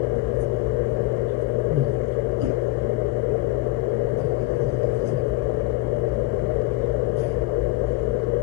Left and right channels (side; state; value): right; quieter; 18.9 dB